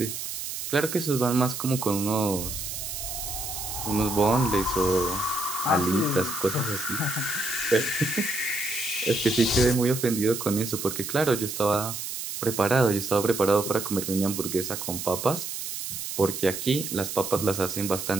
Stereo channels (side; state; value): right; noise; hiss, 6 dB below the sound